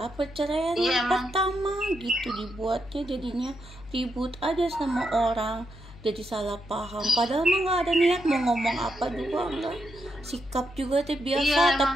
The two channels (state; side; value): noise; left; hum, 19 dB below the sound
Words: perceraian yang pertama gitu dibuatnya jadinya ribut aja sama orang. Jadi salah paham, padahal mah nggak ada niat mau ngomong apa juga enggak. Sikap juga teh biasa,